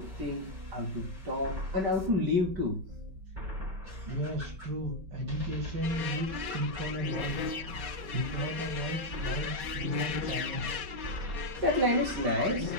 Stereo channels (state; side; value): late; left; 5.3 ms